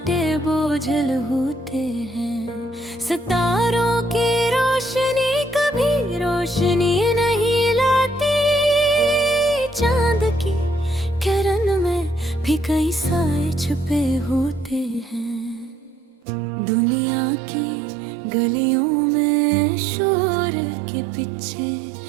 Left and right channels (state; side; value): drops out; left; at 16.2 s